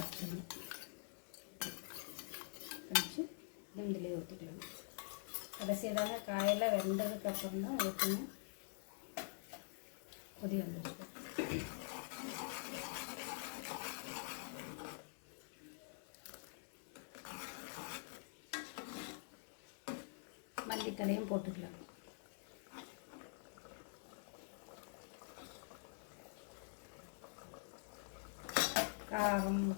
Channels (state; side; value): silent; right; digital silence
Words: கரைச்சி இதிலே ஊற்றிக்கலாம். கடைசியதான காயெல்லாம் வெந்ததுக்கப்புறம் தான் ஊற்றணும். கொதி வந்துடுச்சு. மல்லித்தலையும் போட்டுக்கலாம். காரம்